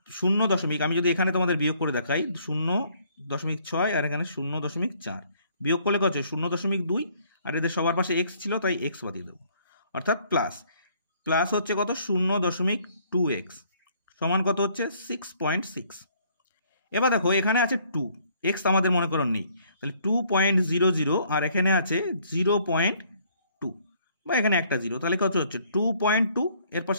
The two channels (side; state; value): both; inverted; correlation -0.63